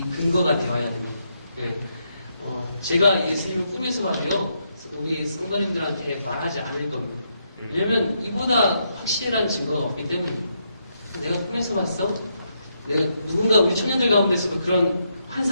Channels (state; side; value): inverted; both; correlation -0.79